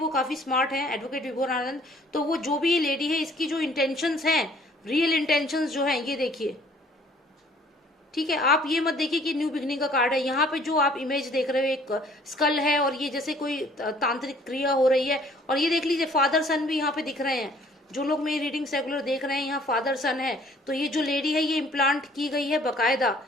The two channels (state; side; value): normal; both; correlation 0.57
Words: काफी स्मार्ट है एडवोकेट विभोर आनंद। तो वो जो भी ये लेडी है, इसकी जो इंटेंशंस हैं, रियल इंटेंशंस जो हैं, ये देखिए, ठीक है। आप ये मत देखिए कि न्यू बिगनिंग का कार्ड है, यहाँ पे जो आप इमेज देख रहे हो एक स्कल है और ये जैसे कोई तांत्रिक क्रिया हो रही है। और ये देख लीजिए फादर सन भी यहाँ पे दिख रहे हैं, जो लोग मेरी रीडिंग रेगुलर देख रहे हैं, यहाँ फादर सन है। तो ये जो लेडी है ये इम्प्लांट की गई है बकायदा,